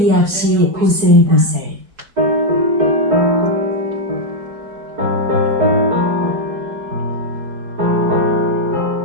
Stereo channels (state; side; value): late; left; 4.7 ms